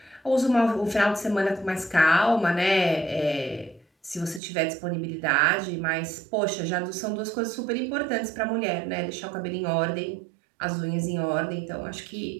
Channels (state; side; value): drops out; left; at 4.4 s